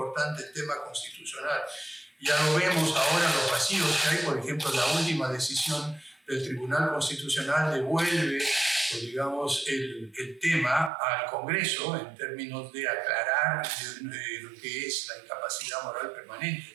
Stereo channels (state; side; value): drops out; left; at 10.9 s